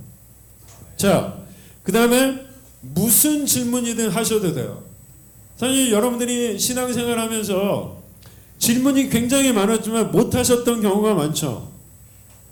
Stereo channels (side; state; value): both; identical; correlation 1.00